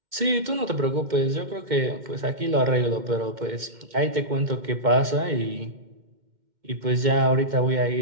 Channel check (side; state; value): left; late; 2.1 ms